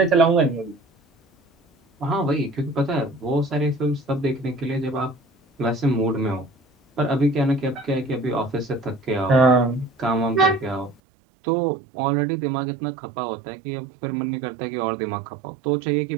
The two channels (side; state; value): left; drops out; at 11.0 s